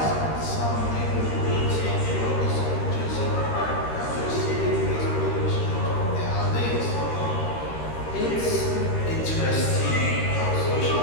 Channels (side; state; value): right; late; 13 ms